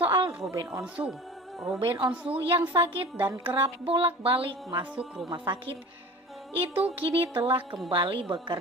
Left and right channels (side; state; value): both; normal; correlation 0.39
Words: Ruben Onsu. Ruben Onsu yang sakit dan kerap bolak-balik masuk rumah sakit itu kini telah kembali